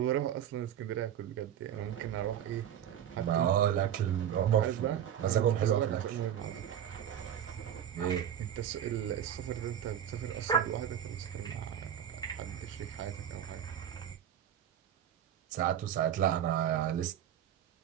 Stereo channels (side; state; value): left; quieter; 10.0 dB